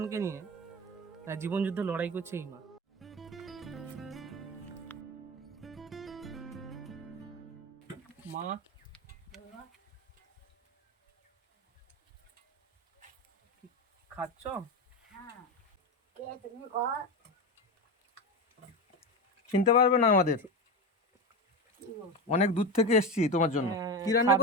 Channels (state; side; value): normal; both; correlation 0.20